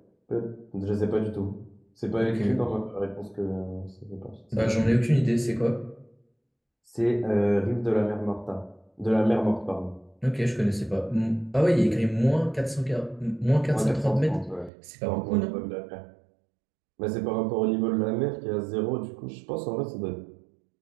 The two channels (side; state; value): left; drops out; at 14.7 s